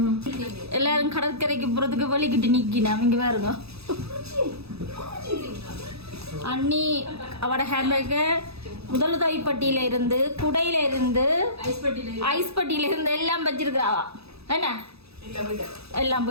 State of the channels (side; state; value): left; late; 0.78 ms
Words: எல்லாரும் கடற்கரைக்கு போறதுக்கு வலிக்கிட்டு நிக்கினா இங்க பாருங்க. அண்ணி அவட ஹேண்ட்பேக்கு முதலுதவிப்பட்டியில இருந்து குடையில இருந்து ஐஸ் பட்டியில இருந்து எல்லாம் வச்சிருக்காவா. என்ன எல்லாம்